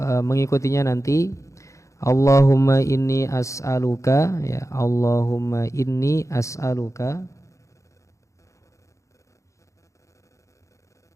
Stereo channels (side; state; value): right; late; 0.15 ms